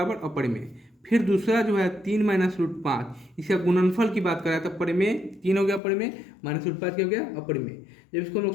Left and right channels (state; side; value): drops out; right; at 5.8 s